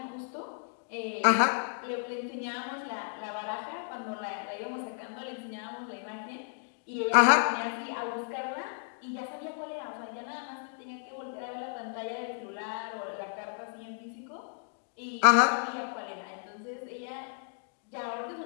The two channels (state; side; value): silent; right; digital silence